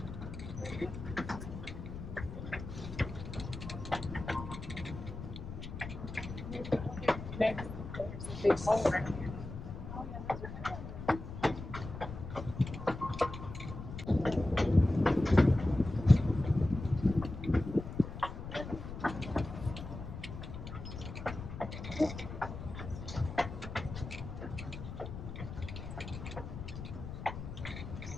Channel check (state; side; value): noise; left; rumble, 9 dB below the sound